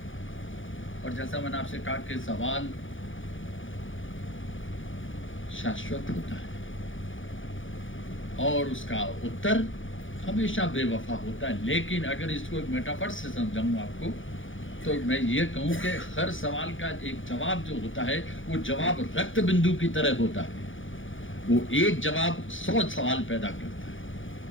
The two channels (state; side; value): late; right; 0.57 ms